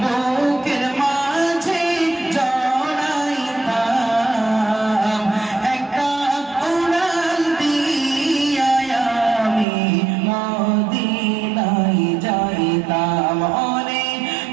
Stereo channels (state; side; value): drops out; left; at 9.7 s